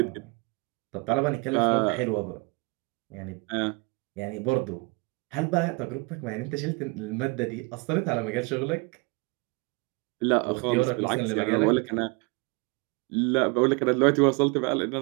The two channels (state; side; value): quieter; left; 28.7 dB